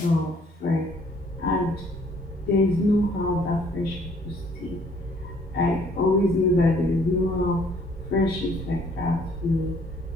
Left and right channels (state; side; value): normal; both; correlation 0.61